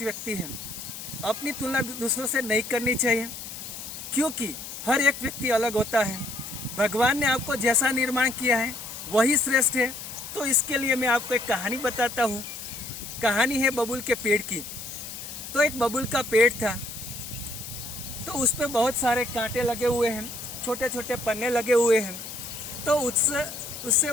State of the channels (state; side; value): noise; left; hiss, 10 dB below the sound